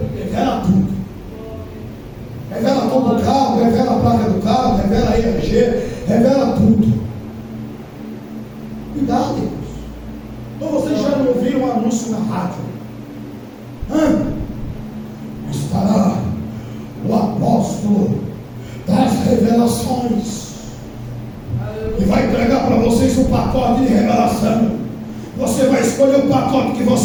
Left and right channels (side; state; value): both; identical; correlation 1.00